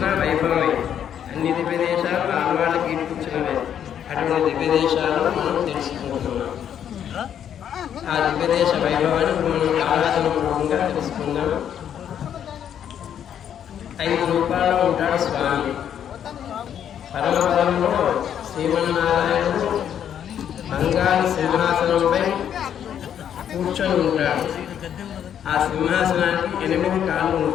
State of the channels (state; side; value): quieter; right; 9.3 dB